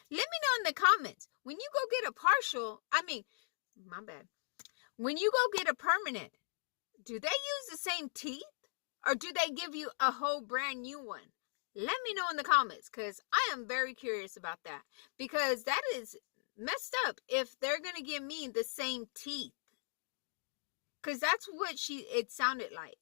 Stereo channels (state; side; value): silent; right; digital silence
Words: know in the comments. When you go get a partial, my bad. When you go get a permanent, do they use the same teeth? Or do they give you a whole brand new one? Let me know in the comments, because I am very curious about that. Because that is messed up if they're going to give me the same teeth. Because that's what it sounded like.